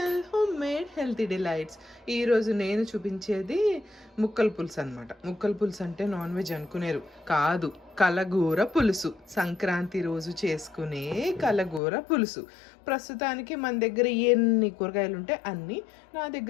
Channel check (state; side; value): drops out; right; at 11.8 s